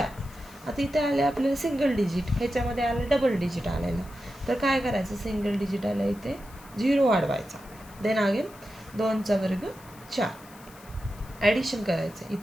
आता इथे आले आपल्याला सिंगल डिजिट, ह्याच्यामध्ये आलं डबल डिजिट आलेलं. तर काय करायचं? सिंगल डिजिट आलं इथे 0 वाढवायचा. देन अगेन 2चा वर्ग 4. ॲडिशन करायचं,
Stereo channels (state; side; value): noise; left; hiss, 23 dB below the sound